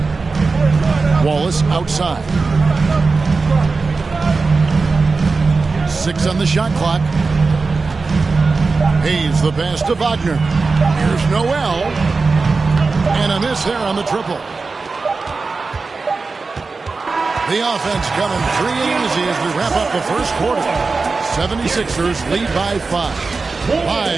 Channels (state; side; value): quieter; left; 4.2 dB